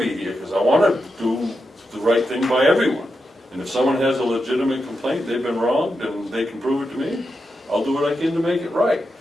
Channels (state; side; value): normal; both; correlation 0.87